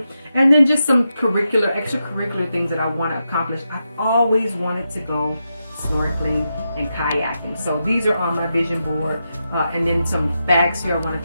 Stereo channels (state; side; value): inverted; both; correlation -0.87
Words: and then just some extracurricular things that I want to accomplish. I've always wanted to go snorkeling and kayaking, so these are on my vision board. And then some bags here. I want